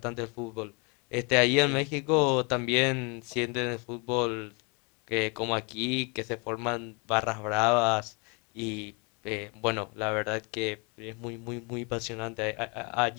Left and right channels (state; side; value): quieter; right; 32.0 dB